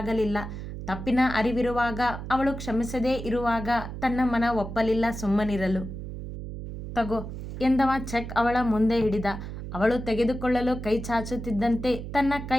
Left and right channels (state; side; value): noise; right; hum, 8 dB below the sound